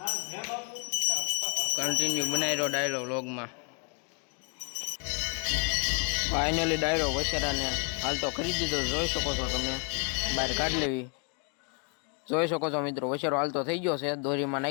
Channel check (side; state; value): right; quieter; 38.5 dB